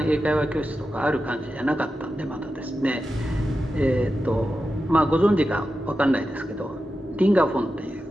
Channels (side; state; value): both; normal; correlation 0.91